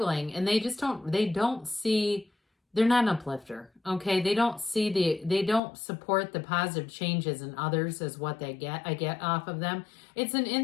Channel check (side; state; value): right; drops out; at 5.6 s